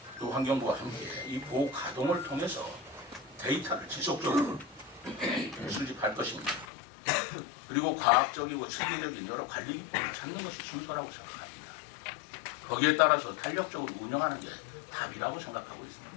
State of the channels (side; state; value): right; drops out; at 6.7 s